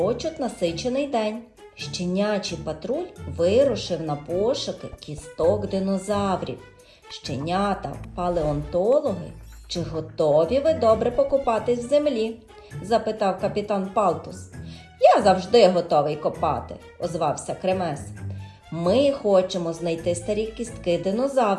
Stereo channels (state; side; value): identical; both; correlation 1.00